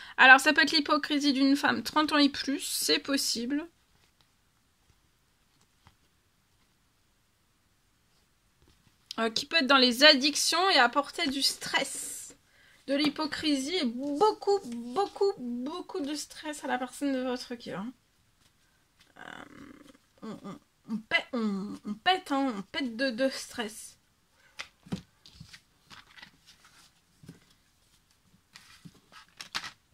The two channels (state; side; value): identical; both; correlation 1.00